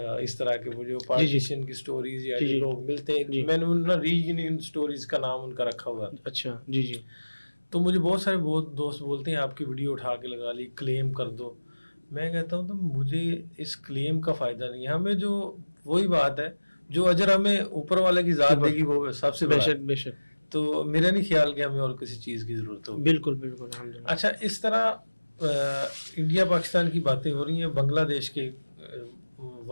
اس طرح کے وہ جو پارٹیشن کی سٹوریز یا جو لوگ ملتے ہیں, میں نے نا رییونین سٹوریز کا نام ان کا رکھا ہوا ہے. اچھا جی جی. تو مجھے بہت سارے دوست بولتے ہیں آپ کی ویڈیو اٹھا کے لگا لی, کلیم کر دو. میں کہتا ہوں تو مجھے اس کلیم کا فائدہ نہیں ہے. ہمیں جو وہی بات ہے جو اجر ہمیں اوپر والے کی ذات دے گی وہ سب سے بڑا. بے شک. تو میرا نہیں خیال کہ ہمیں اور کسی چیز کی ضرورت ہوگی. بالکل بالکل. اچھا اس طرح انڈیا پاکستان کی باتیں ہو رہی ہیں, بنگلہ دیش کے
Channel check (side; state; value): both; inverted; correlation -1.00